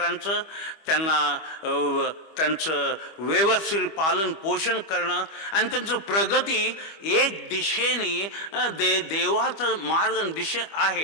त्यांचं व्यवस्थित पालन पोषण करणं आणि त्यांचं प्रगती एक दिशेने देवाचं मार्ग दिशा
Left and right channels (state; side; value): late; right; 25 ms